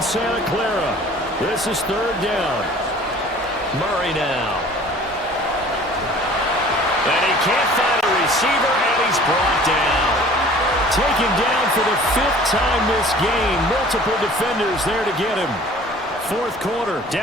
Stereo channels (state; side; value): normal; both; correlation 0.48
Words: Santa Clara. This is 3rd down. Murray now. And he can't find a receiver, and he's brought down. Taken down for the 5th time this game. Multiple defenders there to get him. 4th quarter,